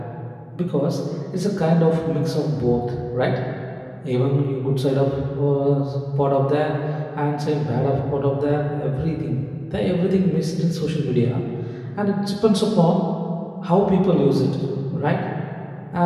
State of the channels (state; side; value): identical; both; correlation 1.00